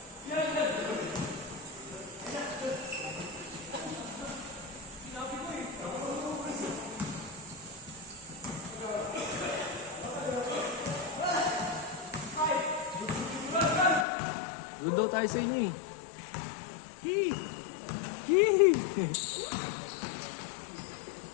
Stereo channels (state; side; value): drops out; right; at 14.1 s